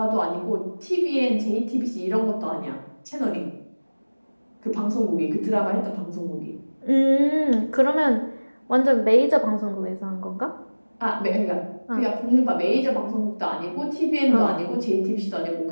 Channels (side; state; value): both; inverted; correlation -1.00